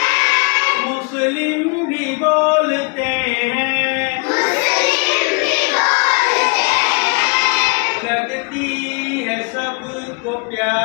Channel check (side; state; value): right; quieter; 30.8 dB